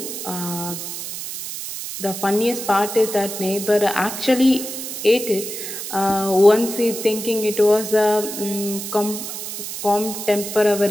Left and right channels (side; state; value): right; noise; hiss, 7 dB below the sound